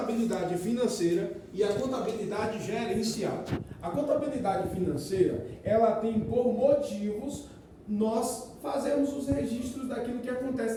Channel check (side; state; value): both; identical; correlation 1.00